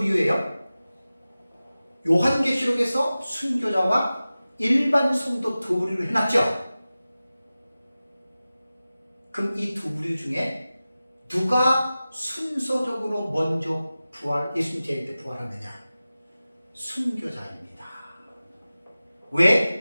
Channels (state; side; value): inverted; both; correlation -0.96